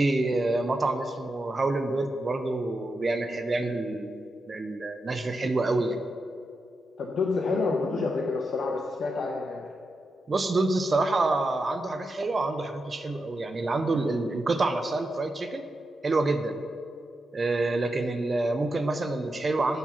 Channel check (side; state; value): both; normal; correlation 0.87